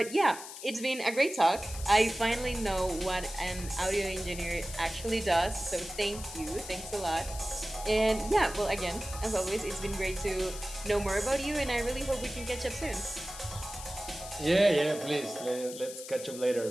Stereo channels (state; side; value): noise; left; hiss, 12 dB below the sound